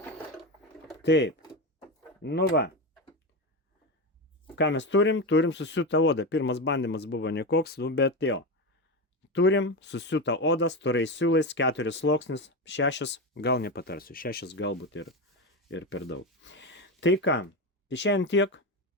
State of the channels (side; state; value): both; normal; correlation 0.17